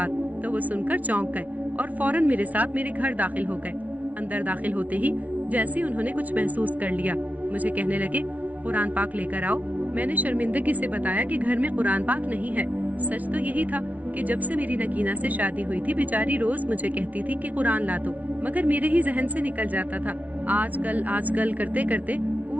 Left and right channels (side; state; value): left; late; 0.071 ms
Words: तो वो सुनकर चौंक गए और फौरन मेरे साथ मेरे घर दाखिल हो गए। अंदर दाखिल होते ही जैसे उन्होंने कुछ महसूस कर लिया, मुझे कहने लगे, कुरान पाक लेकर आओ। मैंने शर्मिंदगी से बताया कि घर में कुरान पाक नहीं है। सच तो यही था कि जब से मेरी नगीना से शादी हुई थी, बेचारी रोज मुझे कहती थी कि कुरान ला दो, मगर मेरे ही जहन से निकल जाता था। आजकल करते करते